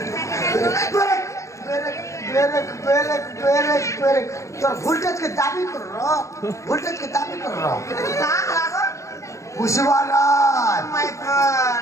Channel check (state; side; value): late; right; 0.15 ms